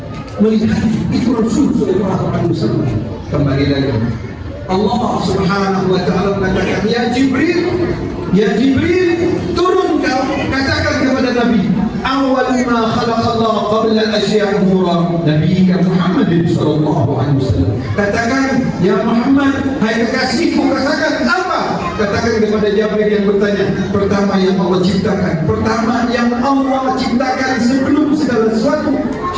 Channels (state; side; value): identical; both; correlation 1.00